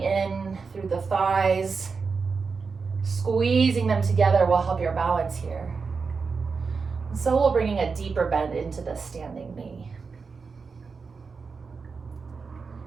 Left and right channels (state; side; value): quieter; left; 5.0 dB